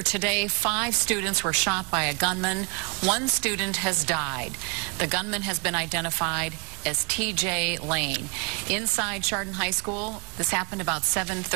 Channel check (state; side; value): quieter; left; 33.5 dB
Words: today, 5 students were shot by a gunman. 1 student has died. The gunman has been identified as T.J. Lane. Inside Chardon High School, this happened about